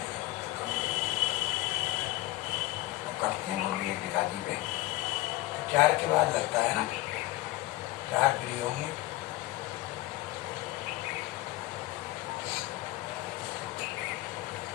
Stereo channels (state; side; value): quieter; right; 18.2 dB